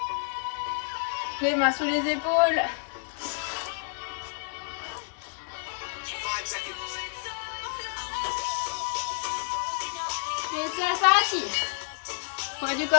Les mains sous les épaules. Et c'est parti. Poids du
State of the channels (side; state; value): right; silent; digital silence